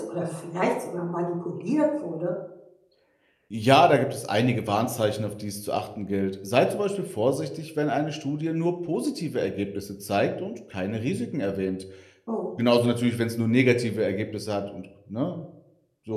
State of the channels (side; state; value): both; identical; correlation 1.00